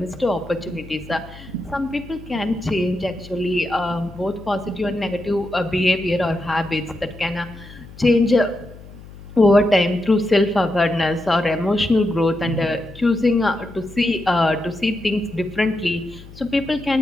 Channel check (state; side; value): noise; left; hum, 18 dB below the sound